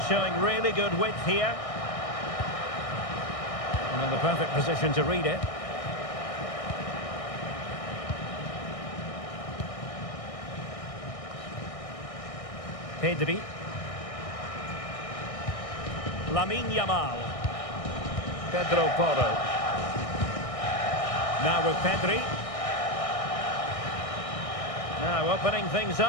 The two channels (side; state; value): right; late; 1.6 ms